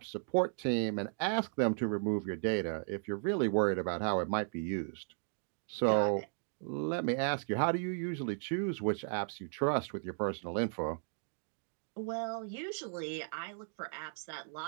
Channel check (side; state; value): left; silent; 54 dB below the other